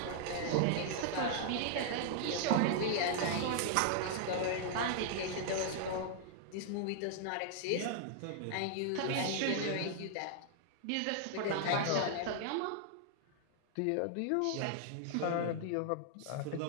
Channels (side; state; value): both; different; correlation 0.00